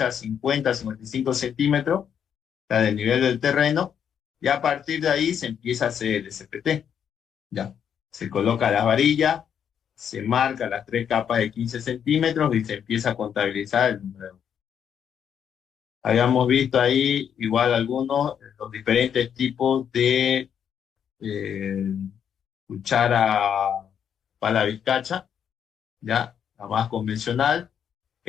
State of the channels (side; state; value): right; quieter; 8.3 dB